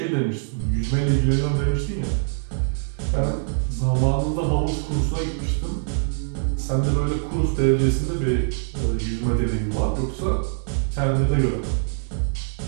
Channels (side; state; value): left; silent; digital silence